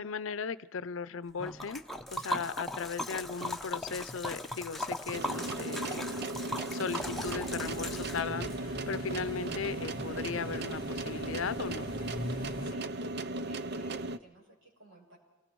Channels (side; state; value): both; normal; correlation 0.17